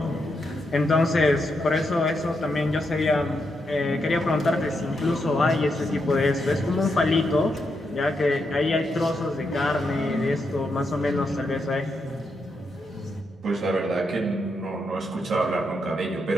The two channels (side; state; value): both; normal; correlation 0.82